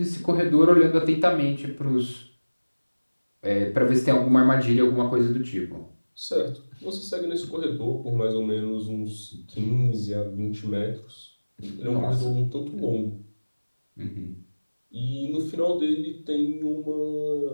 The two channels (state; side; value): inverted; both; correlation -1.00